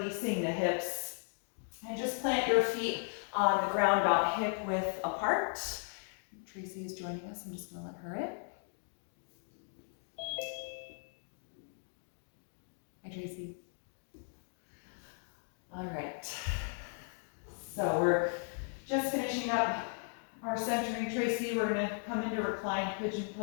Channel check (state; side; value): silent; right; 53 dB below the other